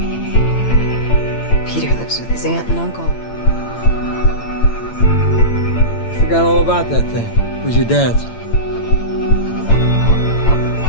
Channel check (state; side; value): late; right; 8.8 ms